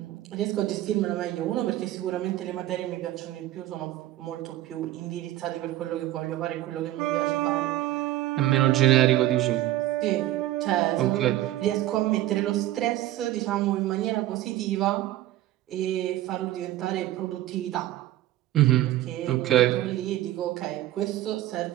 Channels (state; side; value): quieter; left; 14.6 dB